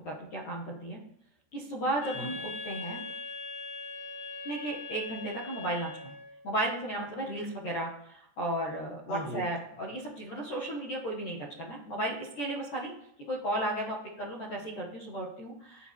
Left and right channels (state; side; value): late; right; 13 ms